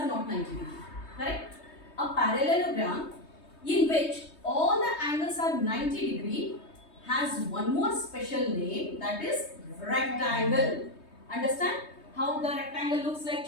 not 90 degree. Correct? A parallelogram in which all the angles are 90 degree has one more special name, that is rectangle. Understand how the rectangle looks like,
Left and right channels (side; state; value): right; late; 3.2 ms